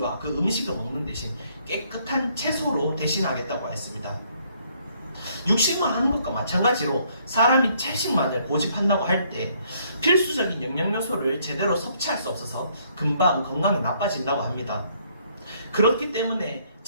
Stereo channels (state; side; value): inverted; both; correlation -0.67